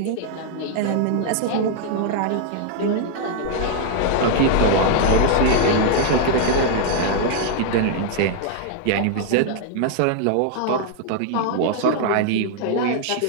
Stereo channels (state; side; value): different; both; correlation 0.00